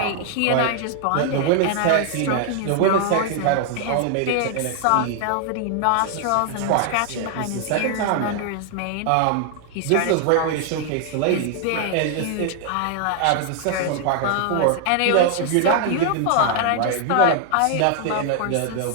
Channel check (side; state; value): both; different; correlation 0.00